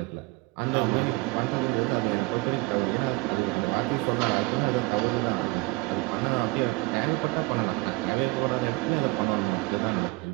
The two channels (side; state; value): left; quieter; 23.9 dB